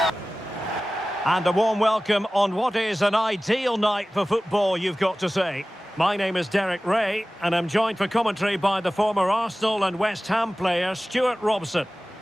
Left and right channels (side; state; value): both; normal; correlation 0.97